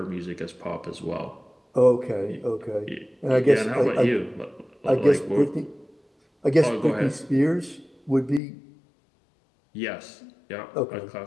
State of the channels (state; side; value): drops out; right; at 8.4 s